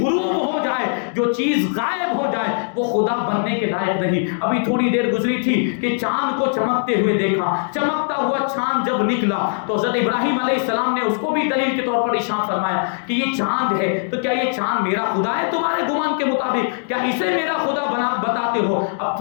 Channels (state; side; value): silent; right; digital silence